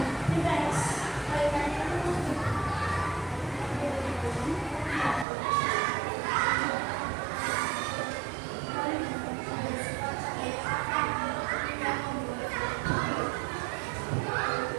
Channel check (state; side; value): drops out; left; at 5.2 s